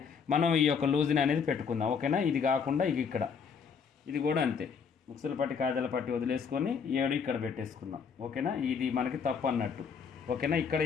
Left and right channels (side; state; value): right; quieter; 6.2 dB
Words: మనం ఈ యొక్క లూజ్ని అనేది పెట్టుకుందాం. ఓకేనా, ఇది కాకుండా ఇది కూడా అంతే. ఉక్సుల పట్టి కాజల పట్టి వదిలేసుకొని 7 ఇక్కడ పెట్టేసుకుందాం. ఓకేనా, ఇది మనకి తప్పు అన్నట్టు. ఓకేనా, ఇక్కడ